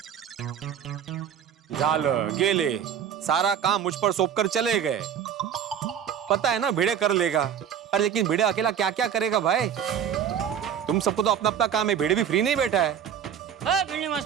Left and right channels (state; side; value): quieter; left; 8.6 dB